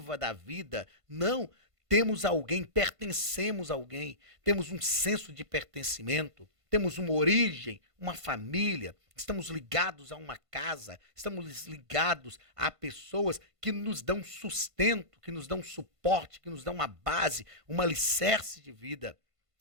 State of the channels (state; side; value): late; left; 1.5 ms